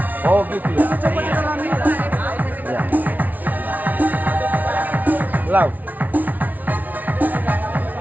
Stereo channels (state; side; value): late; left; 0.078 ms